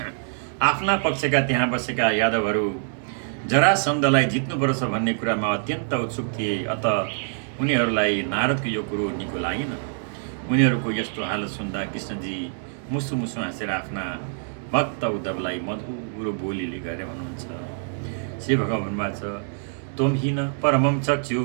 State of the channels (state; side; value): silent; left; digital silence